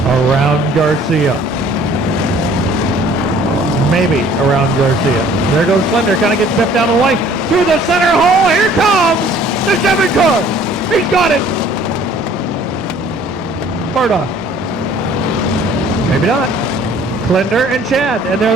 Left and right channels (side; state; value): both; normal; correlation 0.55